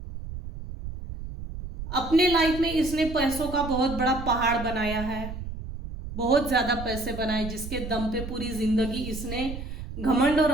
अपने लाइफ में इसने पैसों का बहुत बड़ा पहाड़ बनाया है, बहुत ज्यादा पैसे बनाए, जिसके दम पे पूरी जिंदगी इसने घमंड और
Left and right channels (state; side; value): noise; right; rumble, 9 dB below the sound